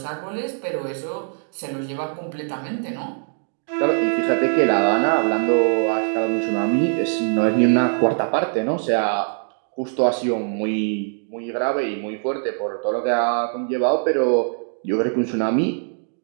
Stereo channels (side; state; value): left; silent; 64 dB below the other